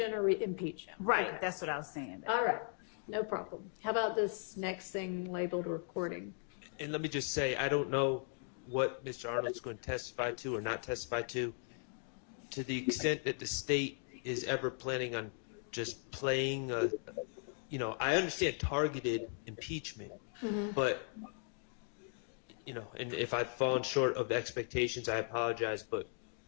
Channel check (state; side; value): silent; right; 52 dB below the other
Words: or impeach him. Right, Okay. that's what I was saying. All right, no problem. How about this next thing labeled recording? And let me just say, I don't know what Mr. Arnold's going to testify to or not testify to. To the extent that the state is ever planning on just playing I understand targeted impeachment, but and if I've fallen short of expectations, I apologize, but